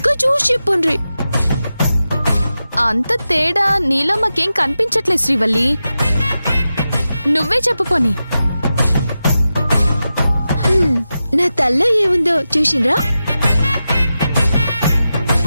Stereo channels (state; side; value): inverted; both; correlation -0.92